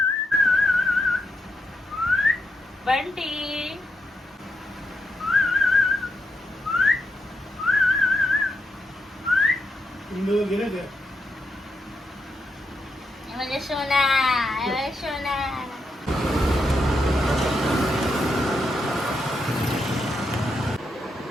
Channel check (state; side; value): normal; both; correlation 0.82